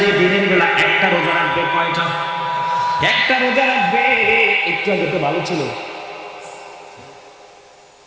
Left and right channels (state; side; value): identical; both; correlation 1.00